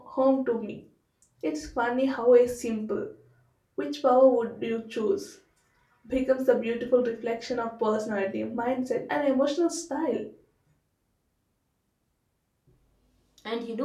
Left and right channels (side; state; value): both; identical; correlation 1.00